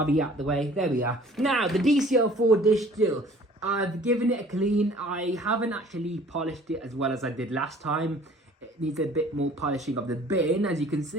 out the way. There we are. Now, the DC04 dish still. I've given it a clean. I haven't actually polished it as well as I did last time. It needs a bit more polishing of the bin, as you can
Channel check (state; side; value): normal; both; correlation 0.52